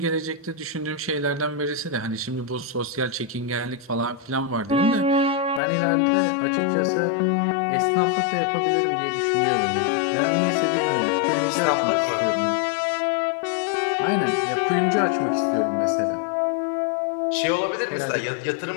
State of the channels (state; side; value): drops out; right; at 5.6 s